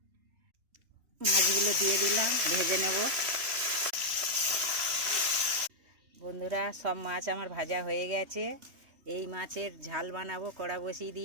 মাছগুলো দিয়ে দিলাম, ভেজে নেব। বন্ধুরা, সব মাছ আমার ভাজা হয়ে গেছে। এই মাছের ঝাল বানাবো, কড়া বসিয়ে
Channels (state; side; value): late; left; 3.1 ms